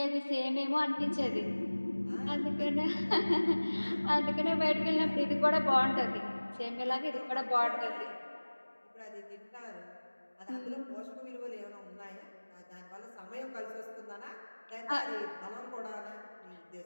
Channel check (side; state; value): both; inverted; correlation -1.00